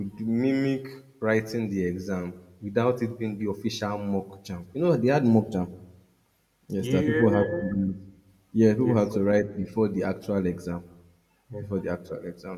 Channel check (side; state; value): both; identical; correlation 1.00